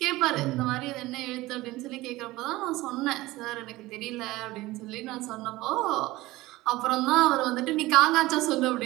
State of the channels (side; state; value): left; quieter; 18.8 dB